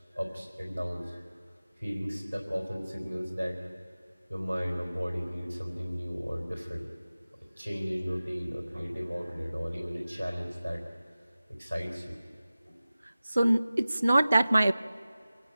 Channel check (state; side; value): inverted; both; correlation -0.96